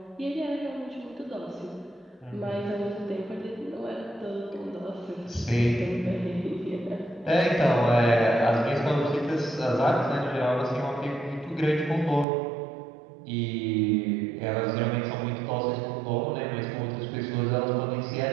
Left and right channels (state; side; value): drops out; left; at 12.2 s